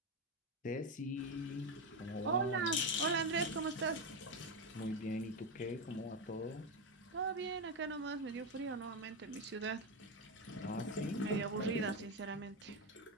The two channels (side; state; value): both; normal; correlation 0.10